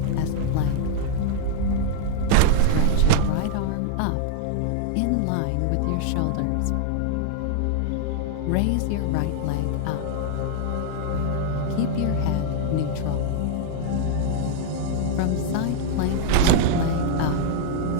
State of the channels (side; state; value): both; different; correlation -0.01